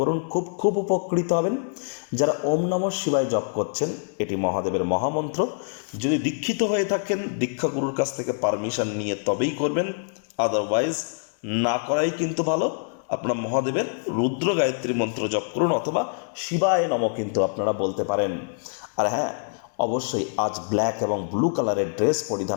খুব উপকৃত হবেন। যারা ওম নমঃ শিবায় জপ করছেন, এটি মহাদেবের মহামন্ত্র। যদি দীক্ষিত হয়ে থাকেন, দীক্ষাগুরুর কাছ থেকে পারমিশন নিয়ে তবেই করবেন, আদারওয়াইজ না করাই কিন্তু ভালো। আপনার মহাদেবের রুদ্র গায়ত্রী মন্ত্র জপ করুন, অথবা শিবায় নমঃ কিন্তু আপনারা বলতে পারেন। আর হ্যাঁ, অবশ্যই আজ ব্ল্যাক এবং ব্লু কালারের ড্রেস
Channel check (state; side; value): silent; right; 62 dB below the other